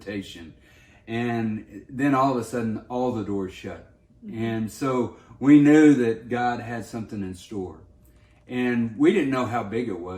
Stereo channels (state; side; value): identical; both; correlation 1.00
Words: And then all of a sudden, all the doors shut. And so we knew that God had something in store. And we didn't know how big it